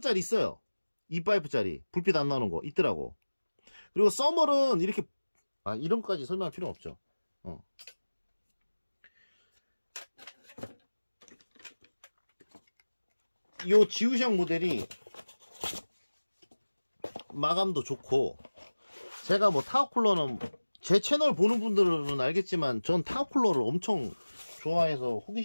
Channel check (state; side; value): inverted; both; correlation -1.00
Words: 있어요. 2파이프짜리 불빛 안 나오는 거 있더라고. 그리고 서멀은 이렇게 이런 것까지 설명할 필요 없죠. 요 지우샹 모델이 마감도 좋고, 제가 뭐 타워쿨러는 제 채널 보는 분들은 알겠지만 전 타워쿨러를 엄청 좋아해서